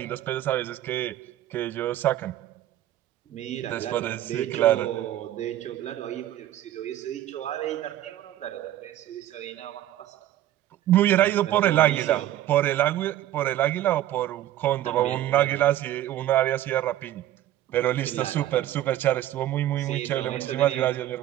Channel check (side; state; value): left; quieter; 13.3 dB